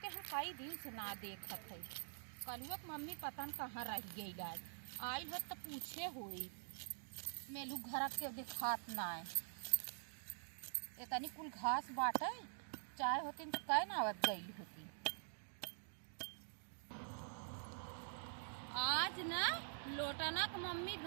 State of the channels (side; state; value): left; silent; digital silence